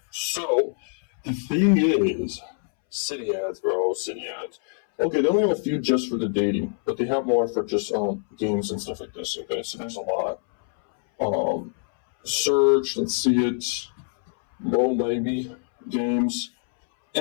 So, the thing is, City Ads, bro, City Ads. Okay, they only have a few just for the dating, but they have more for just games and stuff like this. Okay, so there's a lot. Search, let's see it. Low maybe games,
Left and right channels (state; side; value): silent; right; 62 dB below the other